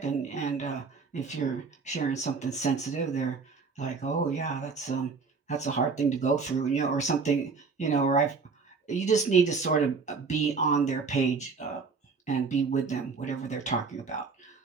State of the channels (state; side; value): quieter; left; 4.9 dB